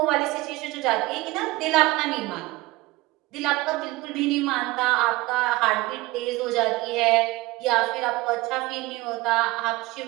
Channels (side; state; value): left; quieter; 20.3 dB